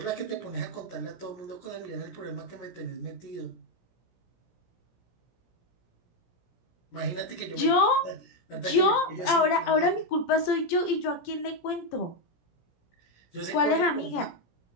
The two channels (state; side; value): late; right; 17 ms